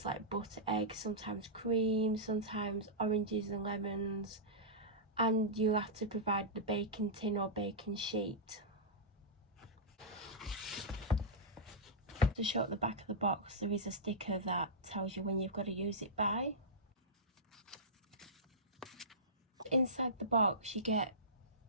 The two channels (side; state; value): both; normal; correlation -0.14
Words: like butter, eggs, sometimes cream, sometimes oranges and lemons, and you have to provide the baking tin or baking sheet. To show at the back of the box, there is a sticker that tells you when you've got to use it by. Inside the box you get